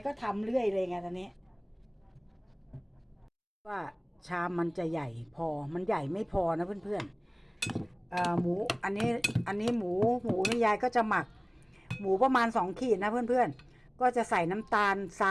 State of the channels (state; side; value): identical; both; correlation 1.00